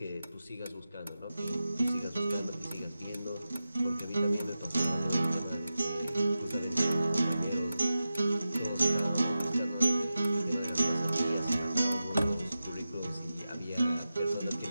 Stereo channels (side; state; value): both; inverted; correlation -0.93